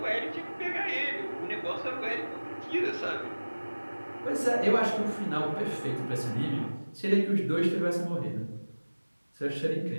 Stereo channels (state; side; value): inverted; both; correlation -1.00